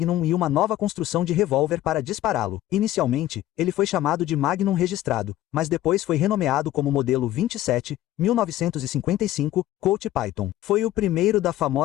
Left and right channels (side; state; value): right; quieter; 14.0 dB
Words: e uma nova construção de revólver para dispará-lo. Inicialmente, ele foi chamado de Magnum registrado, mas depois foi renomeado como Modelo 27, 1955, Colt Python. Foi o primeiro da